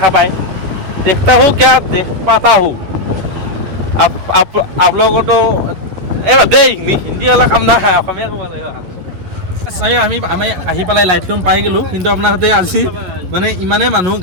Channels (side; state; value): left; late; 11 ms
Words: পায়। देखता हूँ क्या देख पाता हूँ। आप लोगों को तो হিন্দী অলপ কাম নাই, অসমীয়া ক'ব লাগিব। আমি আহি পেলাই লাইটলুম পাই গ'লোঁ, কিন্তু আপোনাৰ সৈতে আজি মানে ইমানেই মানুহ,